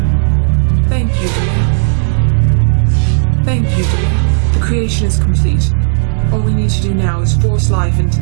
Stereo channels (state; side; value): silent; left; digital silence